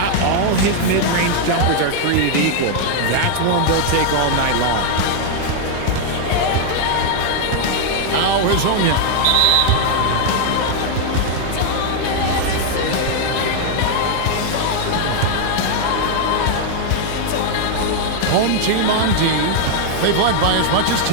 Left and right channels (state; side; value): different; both; correlation 0.00